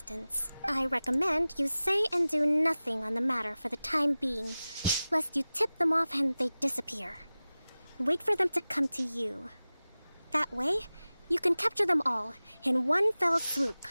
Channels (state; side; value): inverted; both; correlation -0.97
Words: I recommend you say and do nothing on the matter for the time being, lest you tip them off and they disappear. Wait for them to come to you. That way, you can capture them all in one fell swoop.